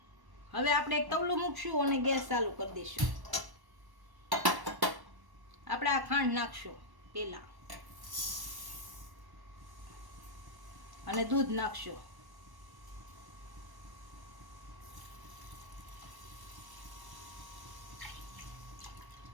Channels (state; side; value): late; left; 1.1 ms